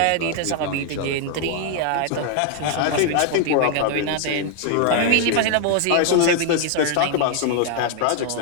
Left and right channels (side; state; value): both; different; correlation 0.00